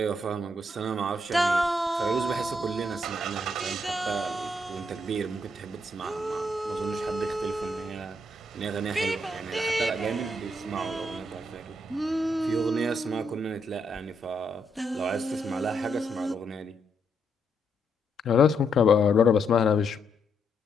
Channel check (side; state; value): both; normal; correlation 0.77